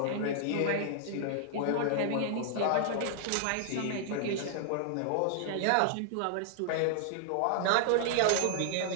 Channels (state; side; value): different; both; correlation -0.01